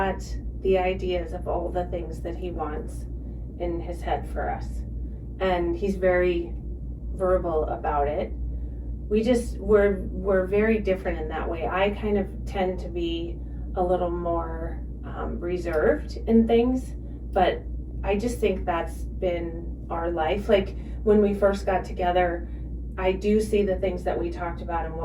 the ideas of all the things that he wants in his head for us. And he's very verbal about it. We're very different in that way. I kind of tend to be a little more reserved in things, but I just think that's been our life. Like, when we first got together, I do see the things that we talked about and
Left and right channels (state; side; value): identical; both; correlation 1.00